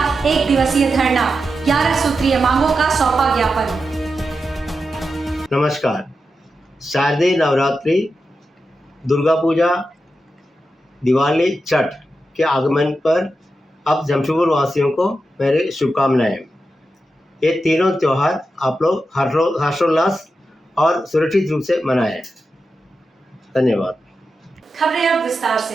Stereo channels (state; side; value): normal; both; correlation 0.89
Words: 1 दिवसीय धरना। 11 सूत्रीय मांगों का सौंपा ज्ञापन। नमस्कार। शारदीय नवरात्रि, दुर्गा पूजा, दिवाली, छठ के आगमन पर अब जमशेदपुर वासियों को मेरे शुभकामनाएं। ये तीनों त्यौहार आप लोग हर्षोल्लास और सुरक्षित रूप से मनाएं। धन्यवाद। खबरें अब विस्तार